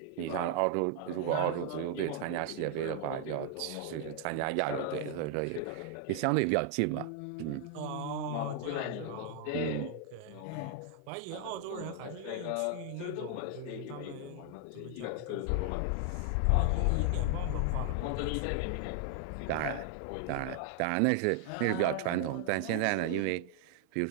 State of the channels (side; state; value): both; different; correlation 0.00